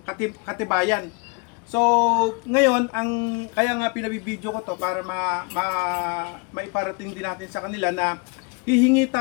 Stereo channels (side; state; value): right; quieter; 30.6 dB